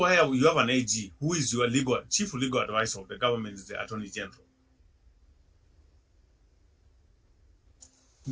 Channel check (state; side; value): identical; both; correlation 1.00